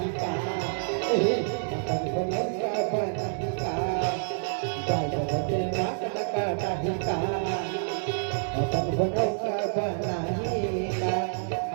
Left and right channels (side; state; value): left; silent; digital silence